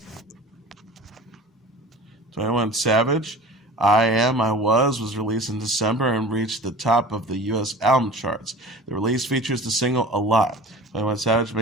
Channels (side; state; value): both; normal; correlation 0.40